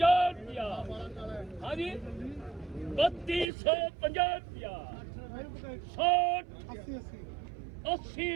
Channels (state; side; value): drops out; left; at 3.5 s